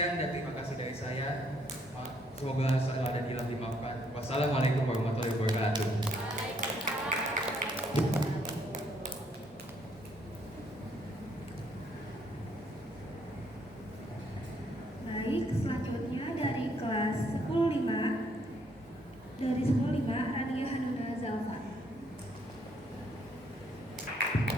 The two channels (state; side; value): normal; both; correlation 0.69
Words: dan terima kasih dari saya. Semoga salah dan hilang dimaafkan. Wassalamualaikum warahmatullahi wabarakatuh. Baik, selanjutnya dari kelas 105 dari 105 Rania Hanuna Zalfa.